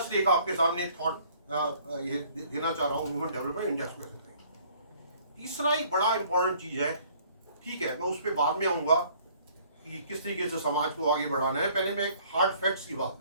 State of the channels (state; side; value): inverted; both; correlation -0.58